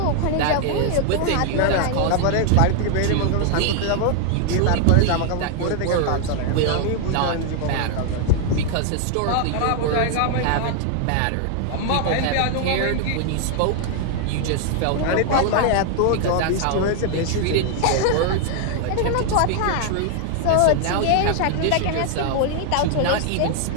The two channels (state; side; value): different; both; correlation 0.00